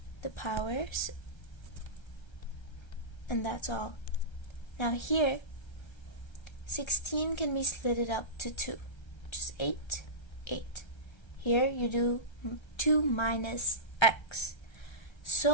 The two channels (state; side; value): late; right; 1.3 ms